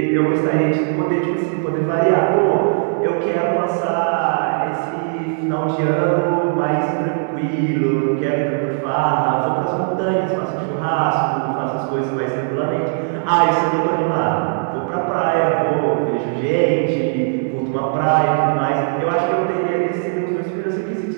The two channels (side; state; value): left; silent; digital silence